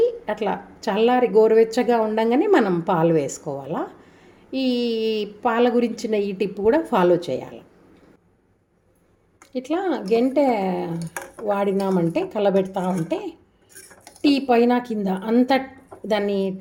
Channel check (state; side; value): identical; both; correlation 1.00